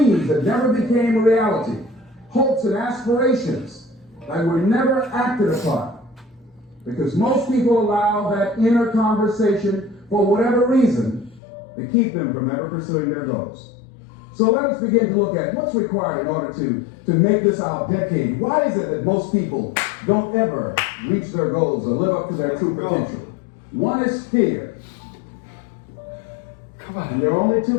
that never became a reality, hopes and aspirations. that were never acted upon. Because most people allow that inner conversation, for whatever reason, to keep them from ever pursuing their goals. So let us begin to look at what's required in order to make this our decade. Why is it that most people don't ever reach their goals or live up to their true potential? One is fear. Come on. And there are only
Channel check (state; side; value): drops out; right; at 11.4 s